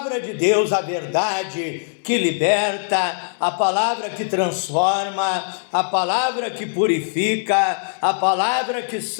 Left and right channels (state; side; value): silent; right; digital silence